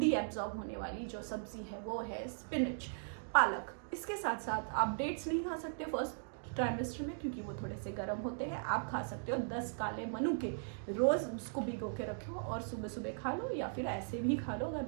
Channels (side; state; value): left; silent; digital silence